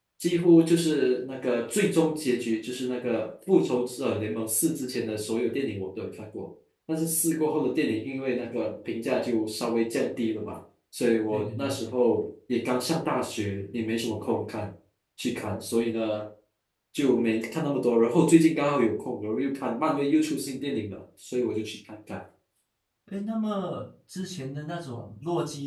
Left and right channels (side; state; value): both; identical; correlation 1.00